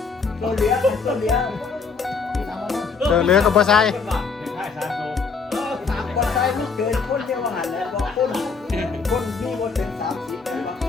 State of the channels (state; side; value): quieter; right; 5.0 dB